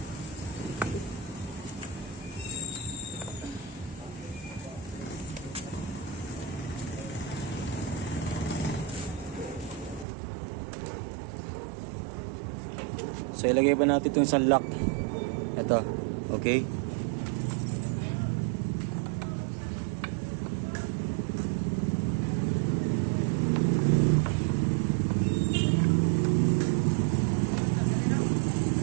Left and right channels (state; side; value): drops out; left; at 10.1 s